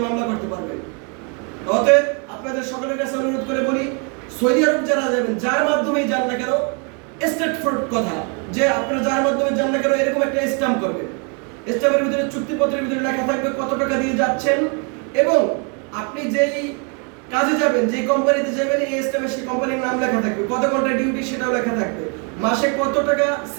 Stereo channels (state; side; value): quieter; left; 36.3 dB